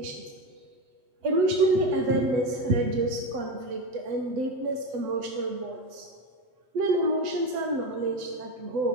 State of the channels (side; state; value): left; late; 7.7 ms